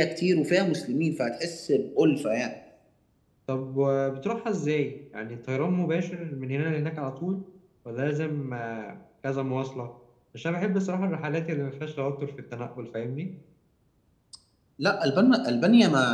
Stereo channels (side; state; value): both; identical; correlation 1.00